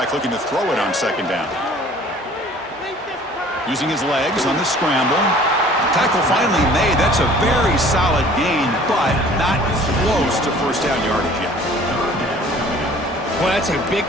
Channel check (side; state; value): both; normal; correlation 0.50